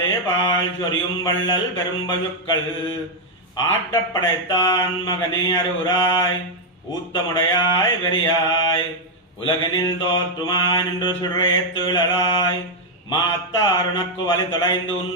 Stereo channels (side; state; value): both; normal; correlation 0.00